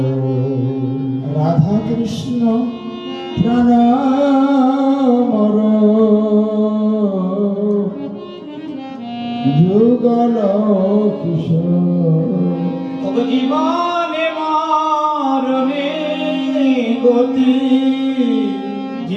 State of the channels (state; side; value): identical; both; correlation 1.00